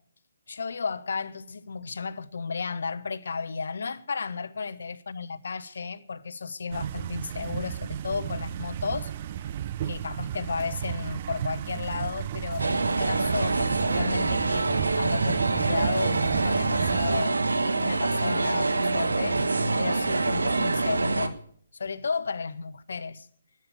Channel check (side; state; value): both; inverted; correlation -0.85